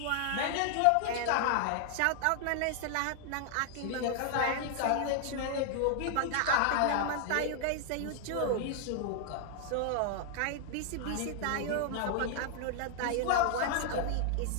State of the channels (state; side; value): different; both; correlation 0.00